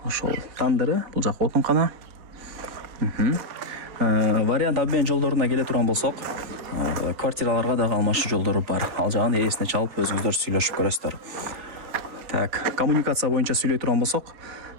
ошол тандыры, бул жак отункана. Вариант обмен жолдоруна келе турган болсок, квартираларга дагы алмашуу жолдору бар. Ал жагын ээсине чалып өзүңүздөр сүйлөшүп көрөсүздөр. Так, коммуникация боюнча сүйлөй турган болсок,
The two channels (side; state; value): left; late; 4.2 ms